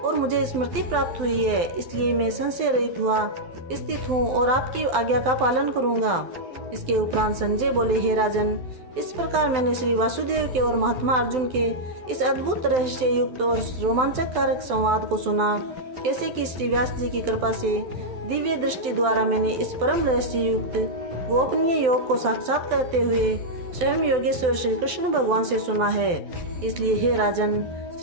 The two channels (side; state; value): left; late; 12 ms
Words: मुझे स्मृति प्राप्त हुई है, इसलिए मैं संशय रहित हुआ स्थित हूँ और आपकी आज्ञा का पालन करूँगा। इसके उपरांत संजय बोले, हे राजन, इस प्रकार मैंने श्री वासुदेव के और महात्मा अर्जुन के इस अद्भुत रहस्य युक्त और रोमांचक कारक संवाद को सुना। कैसे कि श्री व्यास जी की कृपा से दिव्य दृष्टि द्वारा मैंने इस परम रहस्य युक्त गोपनीय योग को साक्षात करते हुए स्वयं योगेश्वर श्री कृष्ण भगवान से सुना है। इसलिए हे राजन,